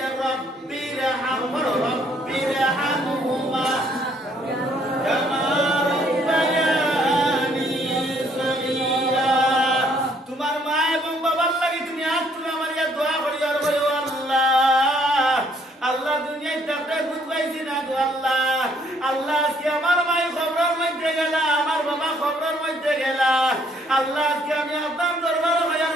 রব্বিরহামহুমা কামা রাব্বায়ানি সগীরা। তোমার মা এবং বাবার লাগি তুমি আজ তুমি আমার ইয়া দোয়া করিও, আর বলো আল্লাহ, আল্লাহ দুনিয়ায় থাকতে বুঝ পাইছি না গো আল্লাহ। আল্লাহ আজকে আমার মায়ের খবরের মধ্যে গেলা, আমার বাবা খবরের মধ্যে গেলা। আল্লাহ আজকে আমি আপনার দরবারে হইয়ার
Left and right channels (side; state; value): both; normal; correlation 0.66